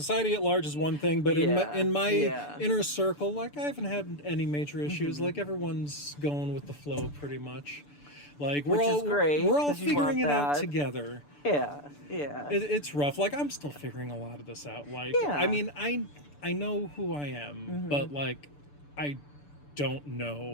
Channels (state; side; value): late; right; 6.9 ms